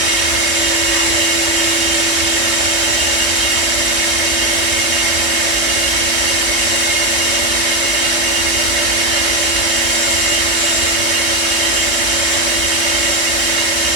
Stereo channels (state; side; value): late; right; 3.2 ms